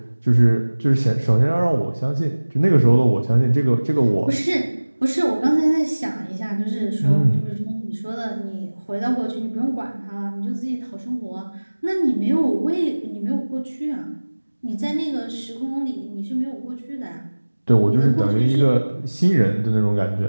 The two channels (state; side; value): inverted; both; correlation -1.00